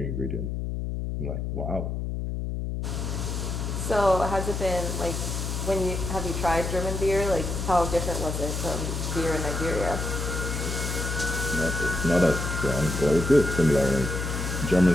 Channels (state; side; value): noise; left; hum, 3 dB below the sound